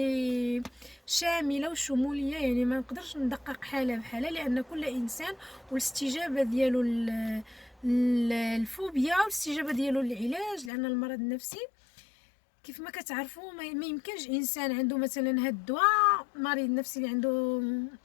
شاملة وشمولية، يعني ما نقدرش ندقق حالة بحالة، لأن كل إنسان والاستجابة ديالو الفوبيا والاستجابة ديالو للعلاج، لأن المرض النفسي كيف ما كتعرفوا ما يمكنش انسان عنده مثلا هاد الدواء، مريض نفسي اللي عنده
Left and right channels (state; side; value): drops out; right; at 10.7 s